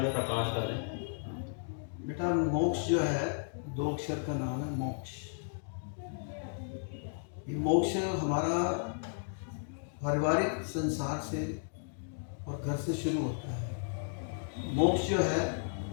में प्रकाश करें। बेटा, मोक्ष जो है 2 अक्षर का नाम है मोक्ष। ये मोक्ष हमारा पारिवारिक संसार से और घर से शुरू होता है। मोक्ष जो है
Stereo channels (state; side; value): silent; right; digital silence